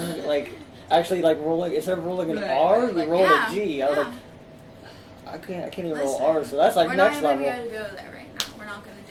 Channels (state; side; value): identical; both; correlation 1.00